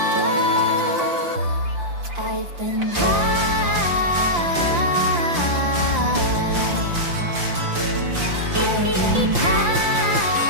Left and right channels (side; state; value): left; late; 5.8 ms